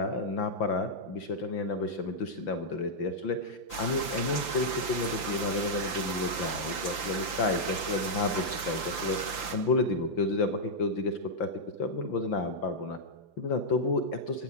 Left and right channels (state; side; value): late; right; 5.9 ms